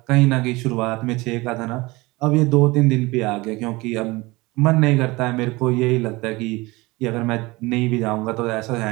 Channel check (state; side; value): quieter; left; 22.5 dB